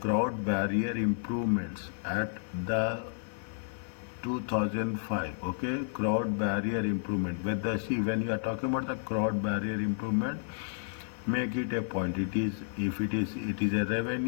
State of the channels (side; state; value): right; silent; digital silence